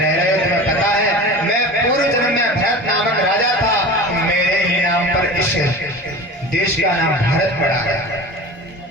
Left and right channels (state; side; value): normal; both; correlation 0.34